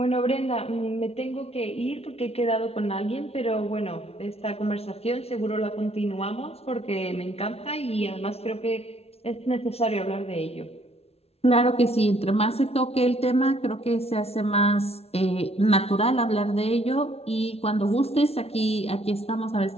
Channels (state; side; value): late; right; 0.30 ms